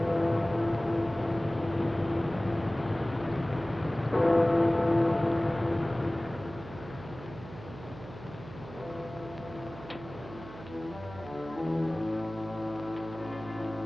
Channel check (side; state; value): right; noise; hum, 15 dB below the sound